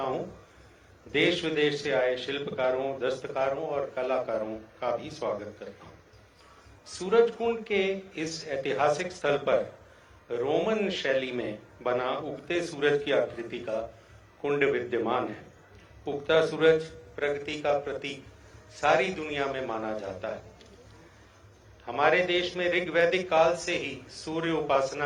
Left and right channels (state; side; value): identical; both; correlation 1.00